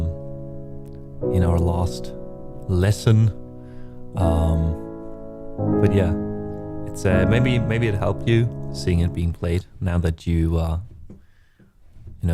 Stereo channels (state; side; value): identical; both; correlation 1.00